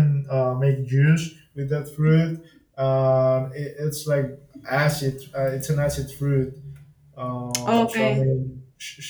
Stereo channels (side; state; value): both; identical; correlation 1.00